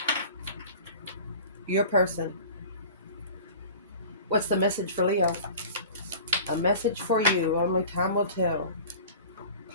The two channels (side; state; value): both; inverted; correlation -0.40